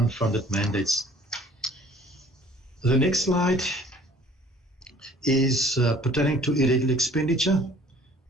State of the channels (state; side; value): normal; both; correlation 0.53